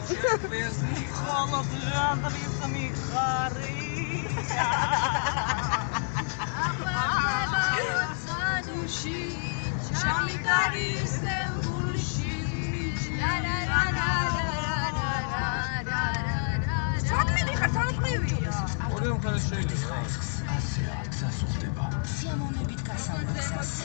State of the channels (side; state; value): right; silent; 59 dB below the other